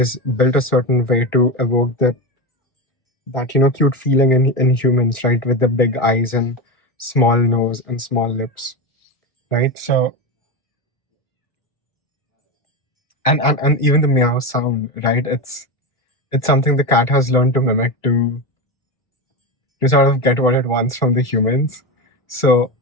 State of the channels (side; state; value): right; late; 1.4 ms